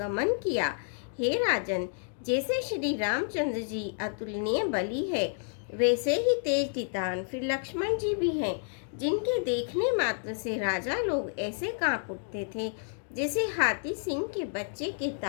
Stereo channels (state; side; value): silent; right; digital silence